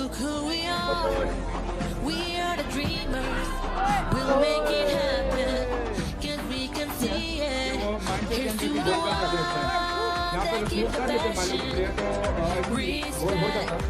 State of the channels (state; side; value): identical; both; correlation 1.00